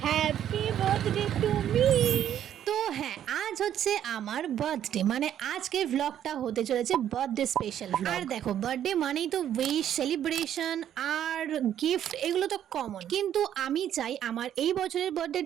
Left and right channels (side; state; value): left; quieter; 10.4 dB